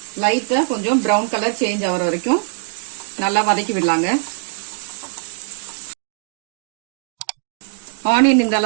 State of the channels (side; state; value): left; silent; 65 dB below the other